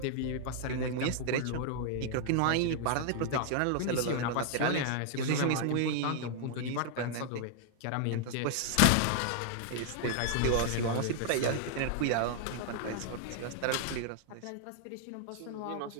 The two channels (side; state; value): both; different; correlation -0.01